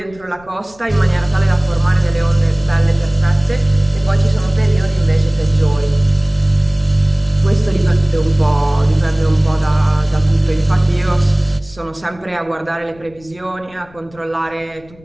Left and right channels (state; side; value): noise; left; rumble, 25 dB below the sound